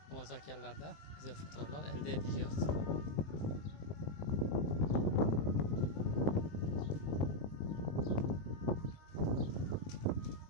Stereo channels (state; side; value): late; right; 20 ms